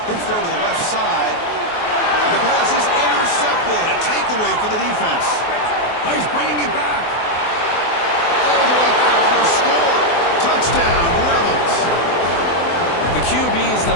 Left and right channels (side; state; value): right; late; 24 ms